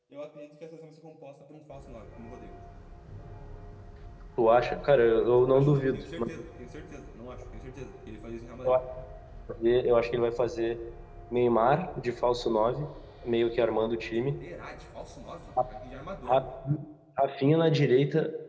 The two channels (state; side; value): identical; both; correlation 1.00